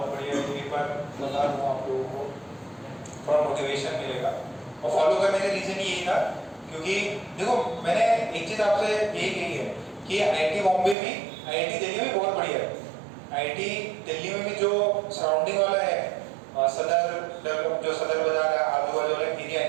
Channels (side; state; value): left; drops out; at 11.0 s